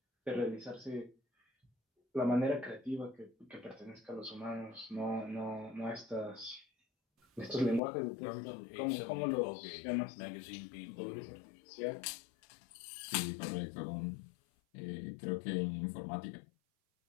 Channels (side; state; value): right; drops out; at 7.8 s